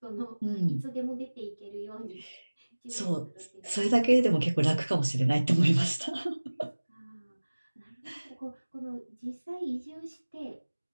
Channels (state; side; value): inverted; both; correlation -1.00